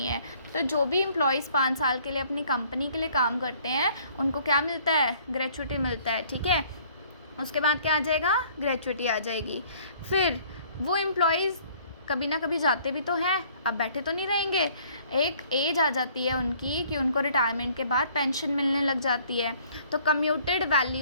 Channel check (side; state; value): both; inverted; correlation -0.58